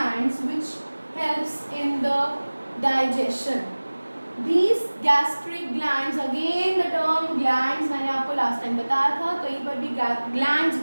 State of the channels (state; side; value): inverted; both; correlation -1.00